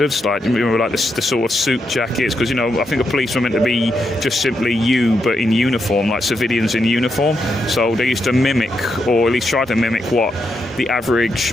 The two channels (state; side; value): normal; both; correlation 0.82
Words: like the sort of suit jackets, because I think a policeman meant to be just simply you, but in uniform, like civilians in uniform. So they used to mimic, or at least try to mimic, what the